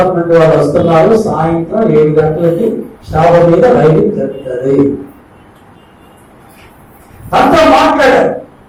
వాళ్ళు వస్తున్నారు, సాయంత్రం 7 గంటలకి షాపు మీద రైడింగ్ జరుగుతుంది. తనతో మాట్లాడారు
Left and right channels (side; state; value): both; identical; correlation 1.00